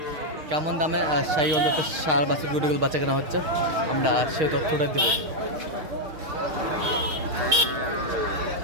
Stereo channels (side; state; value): left; late; 6.5 ms